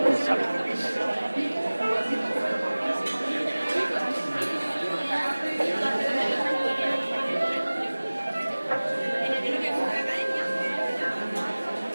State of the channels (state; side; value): inverted; both; correlation -1.00